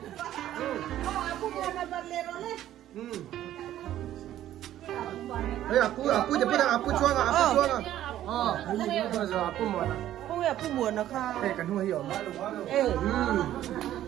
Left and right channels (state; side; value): quieter; left; 12.6 dB